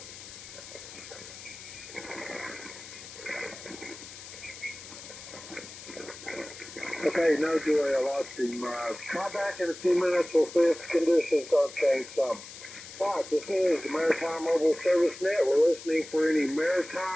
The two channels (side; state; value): left; noise; hiss, 14 dB below the sound